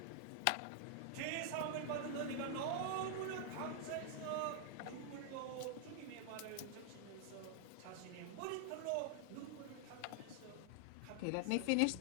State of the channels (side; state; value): both; different; correlation 0.00